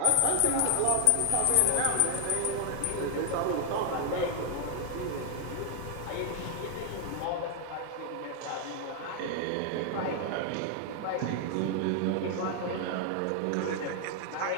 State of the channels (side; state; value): both; different; correlation 0.00